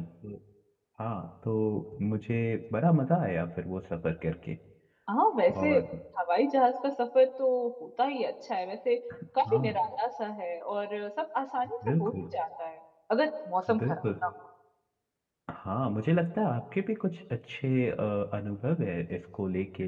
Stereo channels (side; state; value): both; identical; correlation 1.00